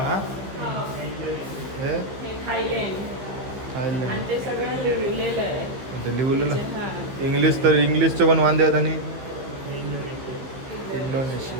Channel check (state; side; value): late; left; 15 ms